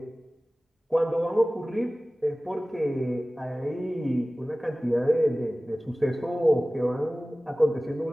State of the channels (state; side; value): normal; both; correlation 0.98